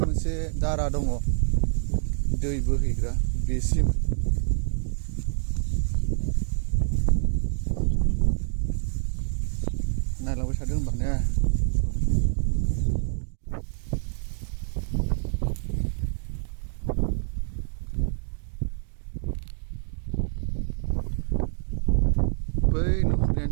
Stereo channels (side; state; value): left; silent; digital silence